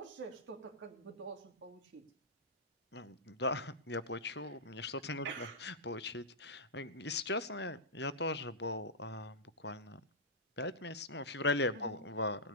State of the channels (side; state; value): both; normal; correlation -0.12